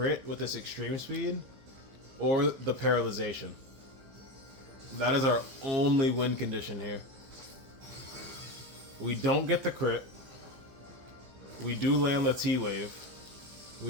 with this extreme speed, or the paralyzation. That is our only win condition here. We don't get the crit. We do land the T-Wave.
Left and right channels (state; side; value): late; left; 15 ms